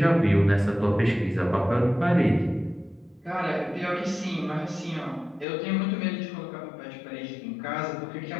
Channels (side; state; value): right; drops out; at 5.5 s